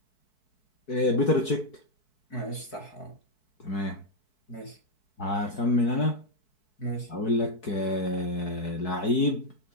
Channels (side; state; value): right; late; 4.6 ms